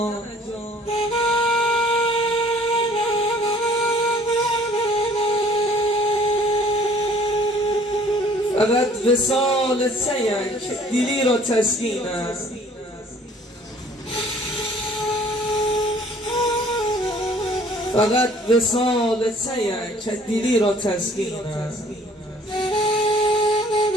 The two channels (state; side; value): normal; both; correlation 0.56